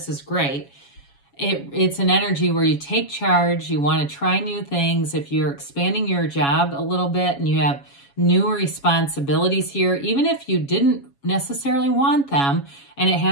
is great. It's an energy where you take charge, you want to try new things. If you're expanding your job a little bit and you have new responsibilities here, even if you didn't necessarily want them, and it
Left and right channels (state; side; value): late; right; 7.2 ms